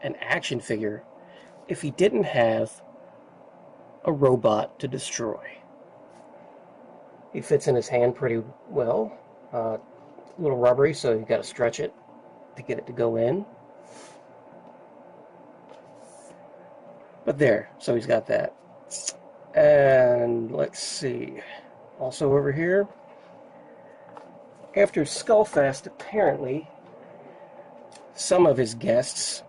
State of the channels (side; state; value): both; identical; correlation 1.00